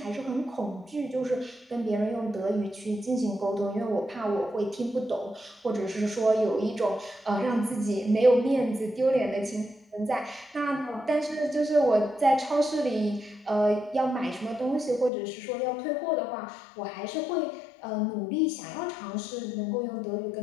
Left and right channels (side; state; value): right; drops out; at 15.1 s